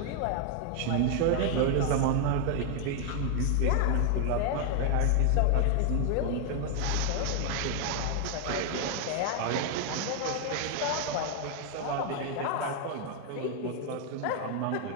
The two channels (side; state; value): both; different; correlation 0.00